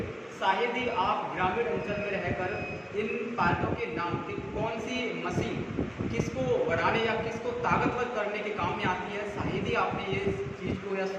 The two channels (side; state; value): both; identical; correlation 1.00